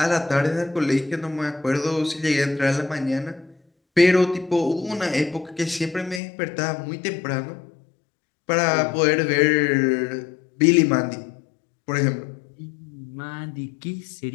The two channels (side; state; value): right; drops out; at 6.2 s